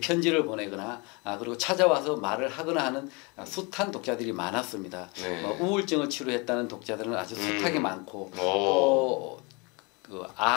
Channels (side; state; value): right; quieter; 28.8 dB